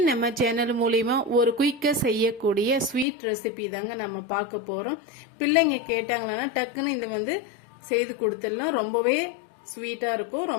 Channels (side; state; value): right; drops out; at 3.1 s